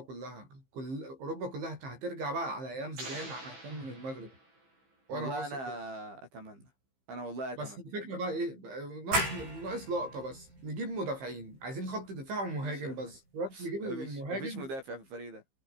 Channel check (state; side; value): late; left; 15 ms